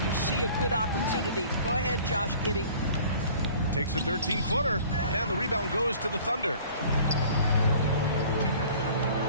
you see a good opportunity. Go ahead, Josh Giddey. Takes a 13-footer, and the rebound goes to the Thunder.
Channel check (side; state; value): both; inverted; correlation -0.49